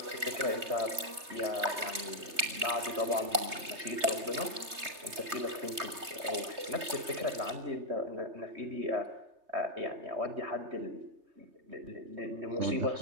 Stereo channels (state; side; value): late; left; 3.3 ms